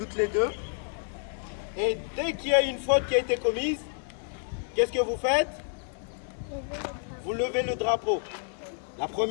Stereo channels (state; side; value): silent; right; 57 dB below the other